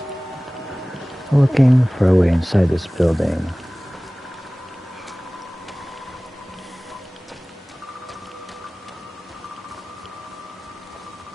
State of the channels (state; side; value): normal; both; correlation 0.98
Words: Looking for a way inside this building.